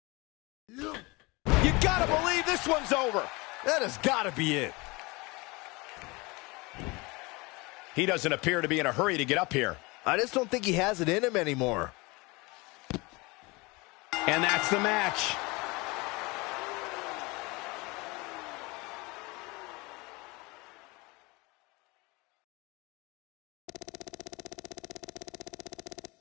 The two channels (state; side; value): quieter; right; 25.0 dB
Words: You gotta believe this one's over. That has gotta be it. He doesn't appear to be in a hurry to get up here. I just don't think he has it in him anymore. And that's the match.